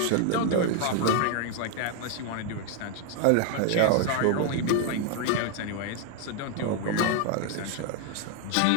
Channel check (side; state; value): both; different; correlation 0.01